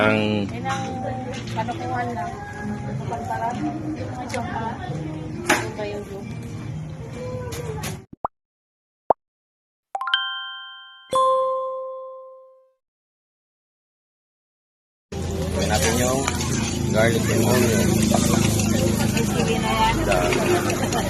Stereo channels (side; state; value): both; identical; correlation 1.00